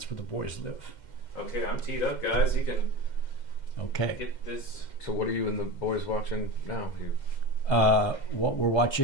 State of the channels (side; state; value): right; late; 2.1 ms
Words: where the boys live. Okay, I'm teed up, guys. You can get this. So what are you and the boys watching now? What we're